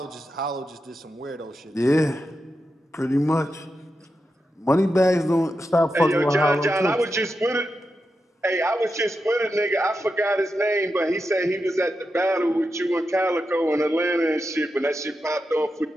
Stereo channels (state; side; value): normal; both; correlation 0.88